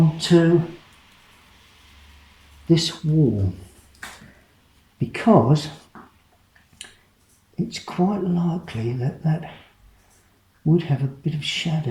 this wall, because it's quite likely that would have a bit of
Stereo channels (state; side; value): identical; both; correlation 1.00